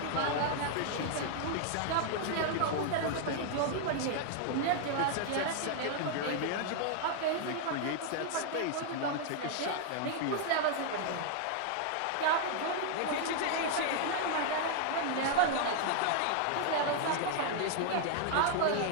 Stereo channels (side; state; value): both; different; correlation 0.00